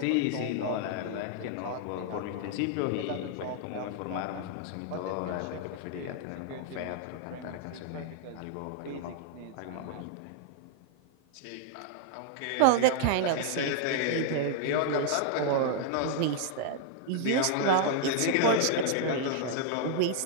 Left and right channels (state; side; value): different; both; correlation 0.00